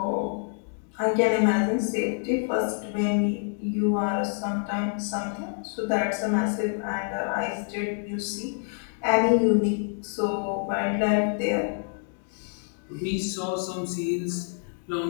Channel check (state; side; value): silent; right; 55 dB below the other